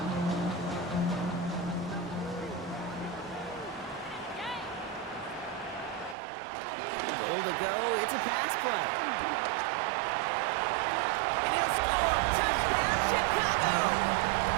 It's a pass play. And he'll score. Touchdown, Chicago!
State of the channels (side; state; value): left; drops out; at 6.2 s